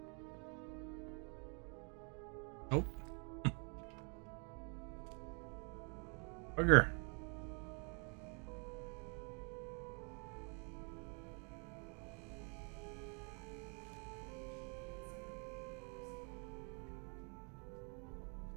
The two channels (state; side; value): quieter; left; 37.1 dB